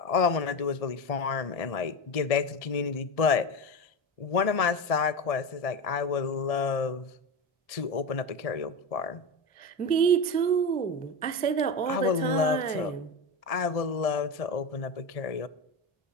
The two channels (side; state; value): right; late; 1.7 ms